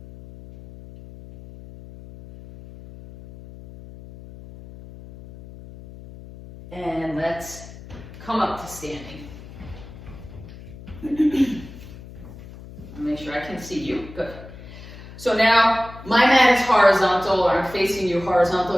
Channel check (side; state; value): left; noise; hum, 16 dB below the sound